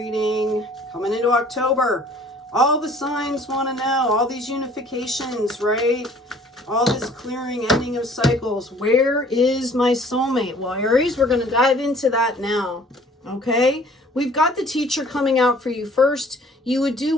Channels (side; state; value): both; normal; correlation 0.54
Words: coming into October. All the signs want to know, all these unifications, right? All this clearing, ending of cycles. Where is my soulmate? Well, Aries, we're going to dive into that now, okay? We've got the teacher coming out for you. First, you would do